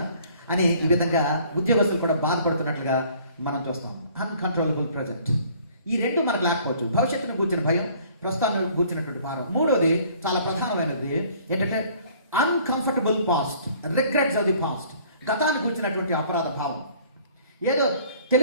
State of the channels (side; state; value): both; inverted; correlation -0.55